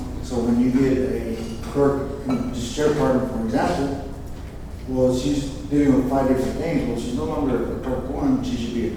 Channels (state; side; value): identical; both; correlation 1.00